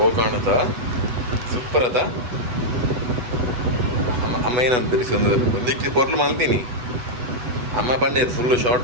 ಕಾಣುತ್ತಾ ಸೂಪರ್ ಅದ ಅಮ್ಮ ಏನಂತೀರಿ ಸುಂದರ ಒಂದಿಕ್ಕಿ ಪೊರ್ಲು ಮಲ್ತೀನಿ ಅಮ್ಮ ಪಂಡೇರು ಫುಲ್ಲು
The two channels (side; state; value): left; late; 8.1 ms